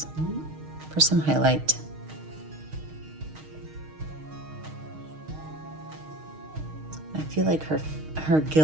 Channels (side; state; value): left; late; 6.4 ms